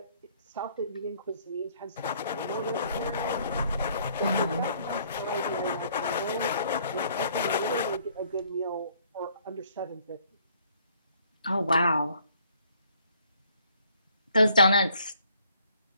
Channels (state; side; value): inverted; both; correlation -0.63